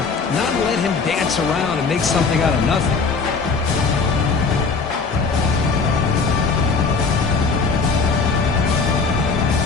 not let him dance around and make something out of nothing.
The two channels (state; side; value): quieter; right; 4.7 dB